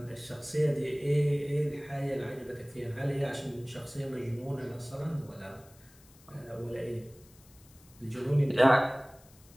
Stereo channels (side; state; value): left; noise; hiss, 26 dB below the sound